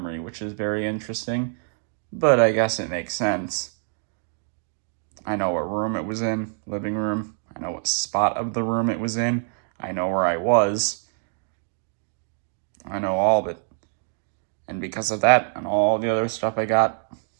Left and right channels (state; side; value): silent; left; digital silence